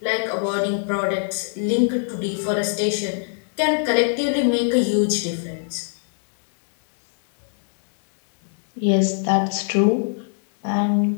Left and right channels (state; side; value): silent; right; 64 dB below the other